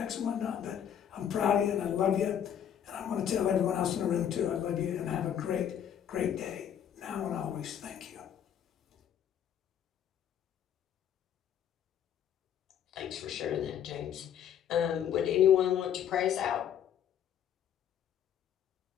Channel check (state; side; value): quieter; right; 9.4 dB